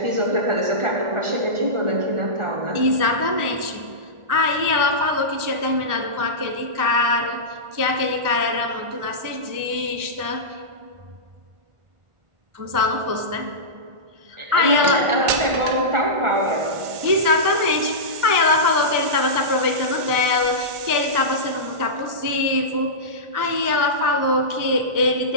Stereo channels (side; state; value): left; late; 1.4 ms